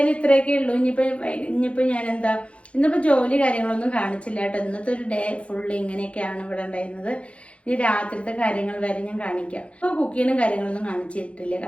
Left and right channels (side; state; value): right; late; 0.061 ms